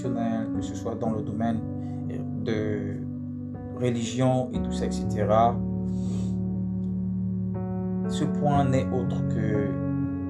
que ce soit dans le domaine de religion et tout ça, etc. Ce point n'est autre que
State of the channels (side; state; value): both; identical; correlation 1.00